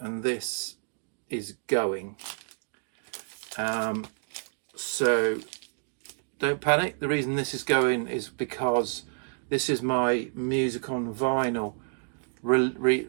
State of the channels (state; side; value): silent; left; 59 dB below the other